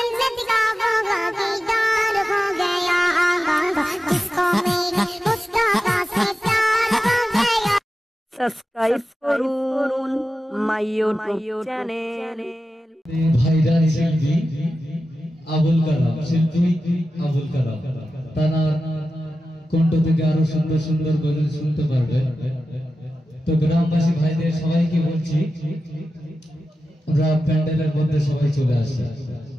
का वो दीदार हो गया। जिसको मेरे मुस्तफा से प्यार हो गया। সাবস্ক্রাইব করুন মাই ইউটিউব চ্যানেল। ভাইরাল শিল্পী আবুল কালাম, শিল্পী আবুল কালাম, তার কণ্ঠ থেকে আরো সুন্দর সুন্দর গজল শুনতে পারবে। তো গ্রামবাসী ভাইদের সবাইকে বলছি আমরা প্যান্ডেলের মধ্যে সবাই চলে আসি।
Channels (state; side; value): normal; both; correlation 0.93